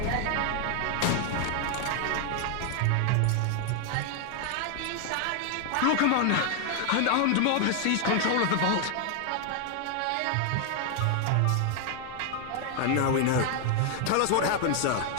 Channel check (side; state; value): both; different; correlation 0.00